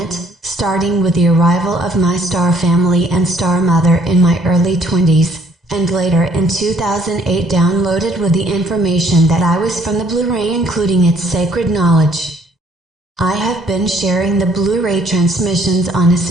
starting with the arrival of my star family and star mother in my early 20s, and later in 2008 downloaded with the information that I was from the Blu-ray, including its sacred knowledge. I have been sharing the Blu-ray transmissions on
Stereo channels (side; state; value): both; normal; correlation 0.63